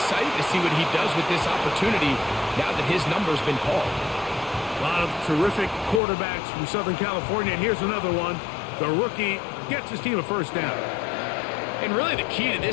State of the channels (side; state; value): right; drops out; at 6.0 s